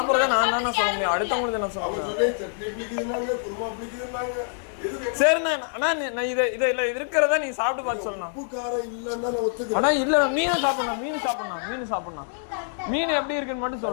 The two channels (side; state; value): right; silent; digital silence